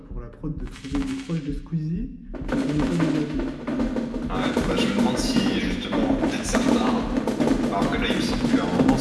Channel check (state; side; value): identical; both; correlation 1.00